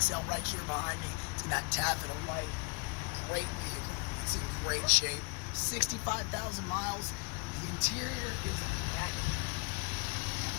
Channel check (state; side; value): quieter; right; 32.2 dB